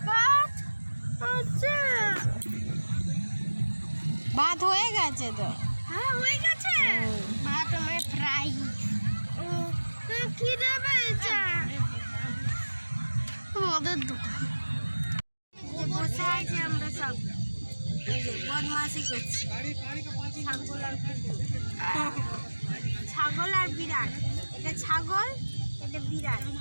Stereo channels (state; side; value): inverted; both; correlation -1.00